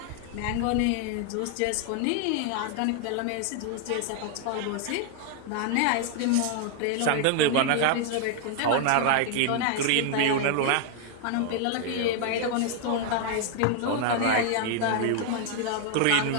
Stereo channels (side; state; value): both; different; correlation 0.00